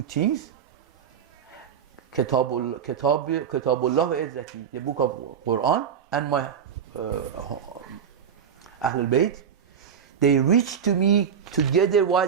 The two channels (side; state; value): left; quieter; 7.6 dB